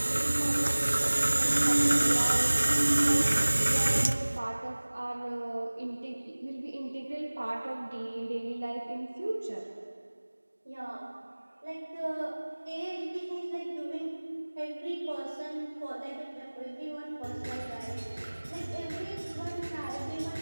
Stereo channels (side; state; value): both; inverted; correlation -1.00